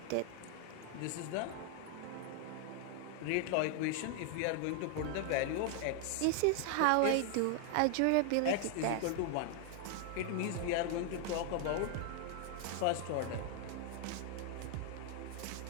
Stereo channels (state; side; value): different; both; correlation 0.00